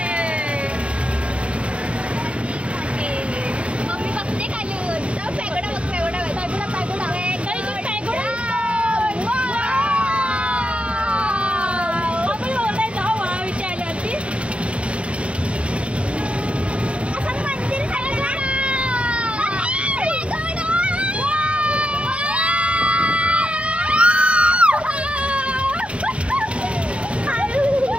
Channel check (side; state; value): left; late; 0.061 ms